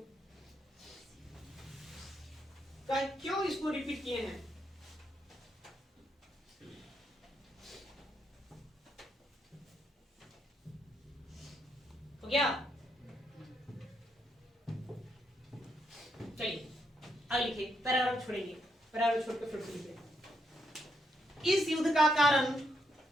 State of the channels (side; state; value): both; normal; correlation 0.79